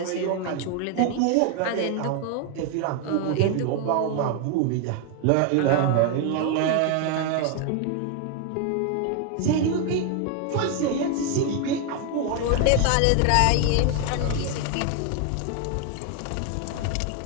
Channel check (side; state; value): both; different; correlation 0.01